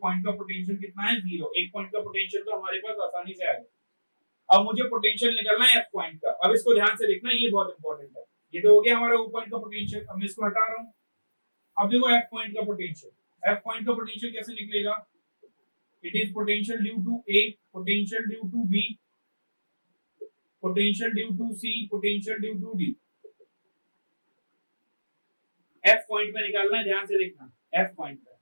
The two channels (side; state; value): both; inverted; correlation -1.00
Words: पॉइंट का पोटेंशियल कितना है? 0। एक पॉइंट का पोटेंशियल तो हमारे पास आसानी से आ गया। अब मुझे पोटेंशियल निकालना है f पॉइंट का। अब इसको ध्यान से देखना, ये बहुत इंपॉर्टेंट है। ये तो हो गया हमारा o पॉइंट का पोटेंशियल, अब मैं इसको हटा रहा हूं। अब देखो f पॉइंट का पोटेंशियल, f पॉइंट का पोटेंशियल कैसे निकलेगा? It is potential due to a, potential due to b, potential due to c, potential due to d। f point में निकालना है, ध्यान से देखना। f पॉइंट में